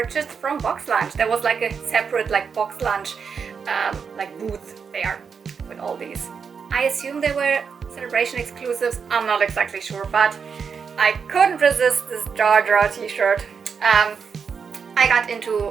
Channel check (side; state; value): left; quieter; 6.1 dB